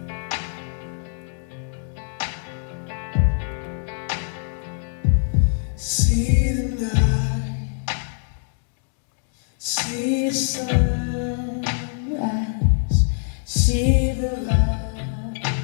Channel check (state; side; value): silent; right; digital silence